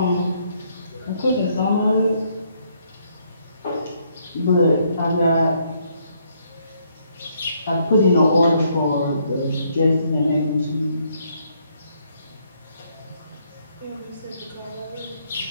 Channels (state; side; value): inverted; both; correlation -0.71